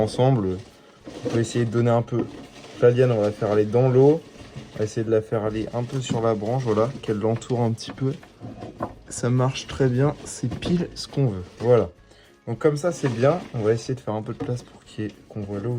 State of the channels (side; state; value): both; identical; correlation 1.00